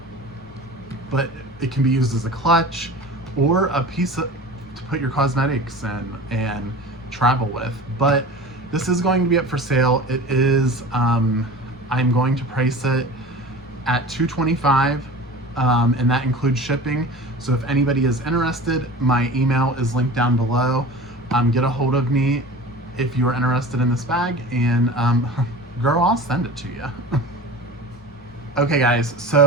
But it can be used as a clutch or a piece to put your cosmetics in and travel with. But this is going to be up for sale. It is, I'm going to price it at $225. And that includes shipping. So if anybody is interested, my email is linked down below. Get a hold of me if you're interested in this bag, and girl, I'll send it to you. Okay guys,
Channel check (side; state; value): both; normal; correlation 0.37